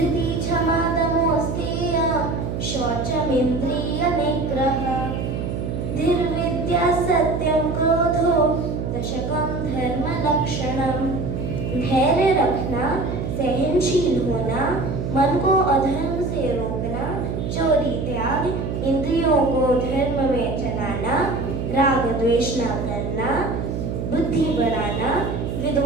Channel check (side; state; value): right; noise; hum, 3 dB below the sound